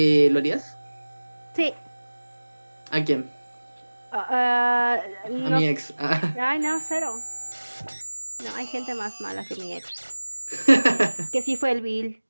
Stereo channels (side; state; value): both; inverted; correlation -1.00